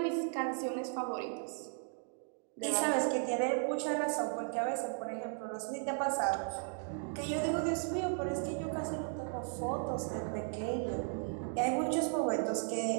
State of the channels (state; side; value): silent; left; 54 dB below the other